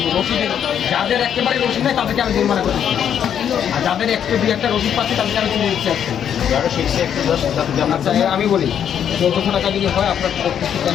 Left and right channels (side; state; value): right; quieter; 8.9 dB